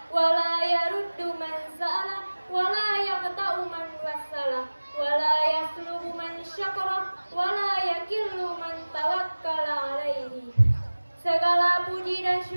wa la yaruddu man sa'ala wa la yaqta'u man wassala wa la yaslubu man syakara wa la yakillu man tawakkala alaihi. Segala puji dan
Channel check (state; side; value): inverted; both; correlation -1.00